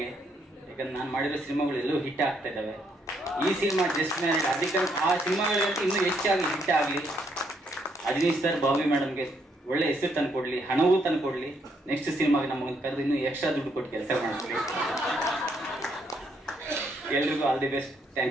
ಯಾಕಂದ್ರೆ ನಾನು ಮಾಡಿರೋ ಸಿನಿಮಾಗಳು ಎಲ್ಲೂ ಹಿಟ್ ಆಗ್ತಾ ಇದ್ದಾವೆ. ಈ ಸಿನಿಮಾ ಜಸ್ಟ್ ಮ್ಯಾರಿಡ್, ಅದಕ್ಕೆ ಆ ಸಿನಿಮಾಗಳಿಗಂತೂ ಇನ್ನೂ ಹೆಚ್ಚಾಗಿ ಹಿಟ್ ಆಗಲಿ. ಅಜನೀಶ್ ಸರ್, ಬಾಬಿ ಮೇಡಮ್ಗೆ ಒಳ್ಳೆ ಹೆಸರು ತಂದು ಕೊಡ್ಲಿ, ಹಣವೂ ತಂದು ಕೊಡ್ಲಿ. ನೆಕ್ಸ್ಟ್ ಸಿನಿಮಾಗೆ ನಮಗೆ ಕರೆದು ಇನ್ನೂ ಎಕ್ಸ್ಟ್ರಾ ದುಡ್ಡು ಕೊಟ್ಟು ಕೆಲಸ ಮಾಡಿಸ್ಲಿ. ಎಲ್ರಿಗೂ all the best.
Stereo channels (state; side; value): normal; both; correlation 0.73